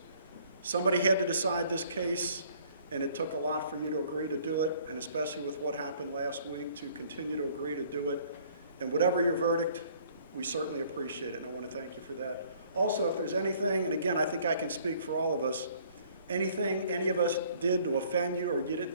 Somebody had to decide this case, and it took a lot for you to agree to do it, and especially with what happened last week, to continue to agree to do it. And whatever your verdict, we certainly appreciate it, and I want to thank you for that. Also, if there's anything, and again, I think I can speak for all of us, anything any of us did to offend you or you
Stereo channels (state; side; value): inverted; both; correlation -0.58